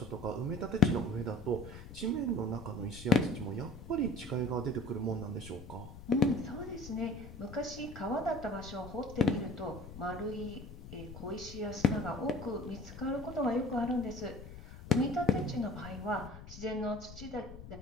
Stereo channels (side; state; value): left; noise; rumble, 14 dB below the sound